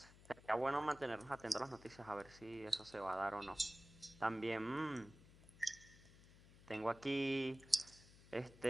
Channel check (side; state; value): left; noise; hum, 21 dB below the sound